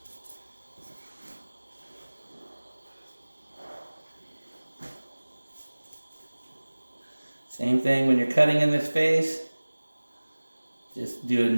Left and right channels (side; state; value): both; inverted; correlation -1.00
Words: Same thing when you're cutting in this face. Just do it